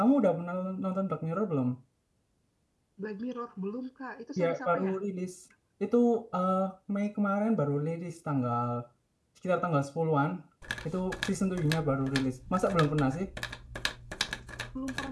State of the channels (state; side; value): identical; both; correlation 1.00